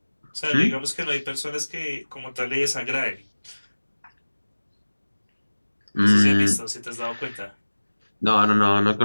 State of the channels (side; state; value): both; inverted; correlation -1.00